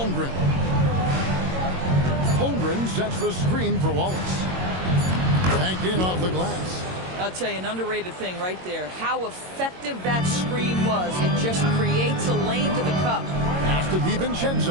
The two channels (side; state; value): left; late; 22 ms